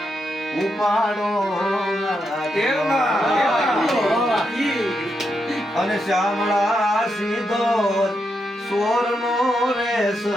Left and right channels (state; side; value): normal; both; correlation 0.83